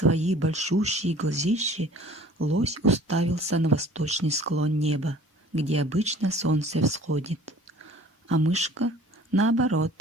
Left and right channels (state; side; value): normal; both; correlation 0.50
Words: большущие глазищи, лось уставился на восточный склон неба, где обычно солнце всходит. А мышка, наоборот,